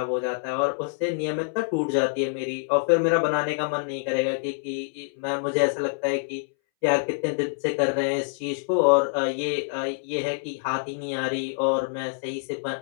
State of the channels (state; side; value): silent; right; 61 dB below the other